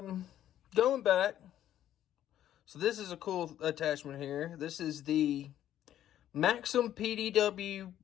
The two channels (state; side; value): quieter; right; 11.7 dB